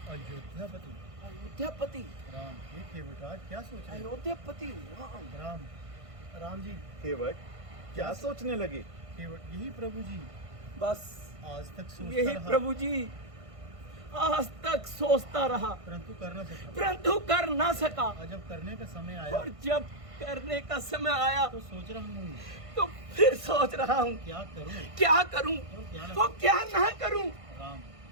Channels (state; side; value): late; left; 1.5 ms